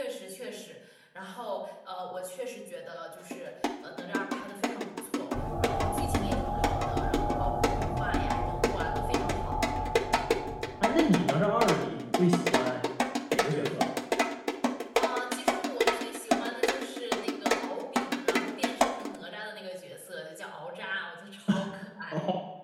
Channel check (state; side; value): identical; both; correlation 1.00